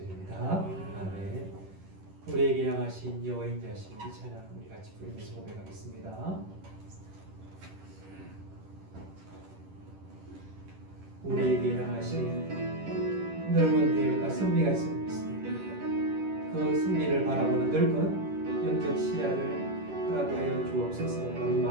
아멘. 우리에게 향하신 여호와의 인자하신 이 찬양 우리 같이 부르면서 고백하겠습니다. 우리에게 향하신 넓은 계획과 승리가 있습니다. 그 승리를 바라보는 넓은 영적 시야를 허락하여 주옵소서라는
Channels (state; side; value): late; left; 10 ms